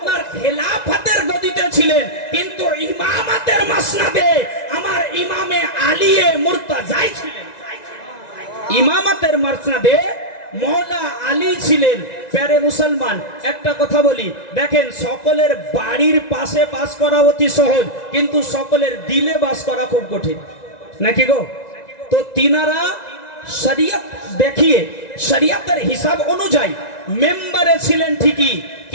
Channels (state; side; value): late; right; 1.9 ms